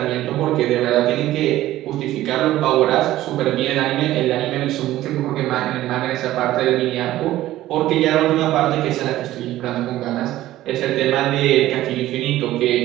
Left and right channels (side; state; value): left; quieter; 14.9 dB